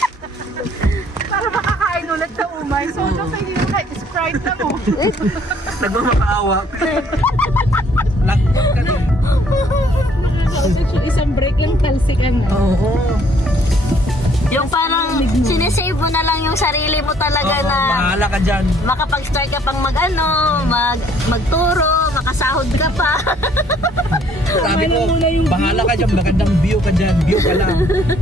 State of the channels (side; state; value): both; normal; correlation 0.62